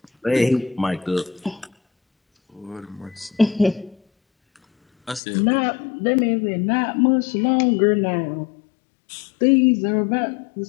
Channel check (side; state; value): right; drops out; at 5.2 s